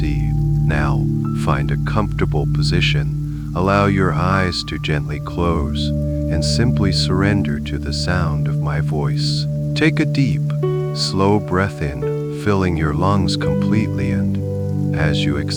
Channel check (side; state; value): both; identical; correlation 1.00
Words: Now, find a comfortable position, allow your eyes to gently close, and simply surrender to the sound of my voice. Take a deep, slow breath in, filling your lungs completely, and as you